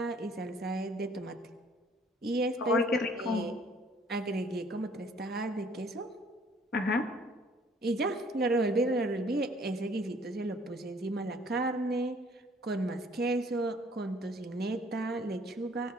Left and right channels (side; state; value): both; normal; correlation 0.58